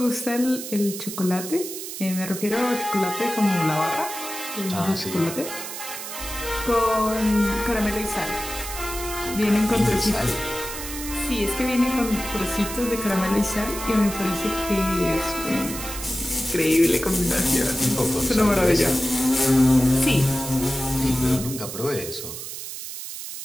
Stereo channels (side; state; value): right; noise; hiss, 8 dB below the sound